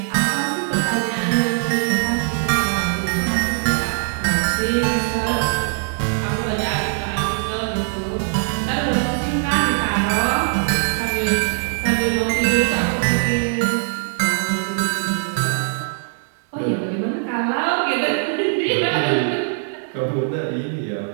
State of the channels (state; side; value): silent; left; digital silence